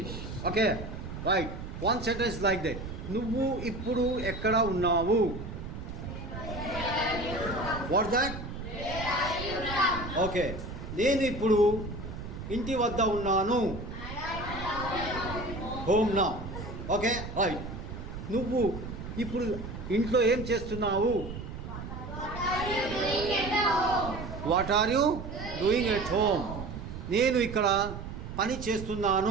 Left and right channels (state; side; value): noise; right; rumble, 9 dB below the sound